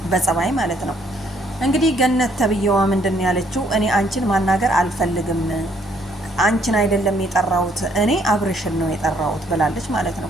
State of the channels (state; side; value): normal; both; correlation 0.67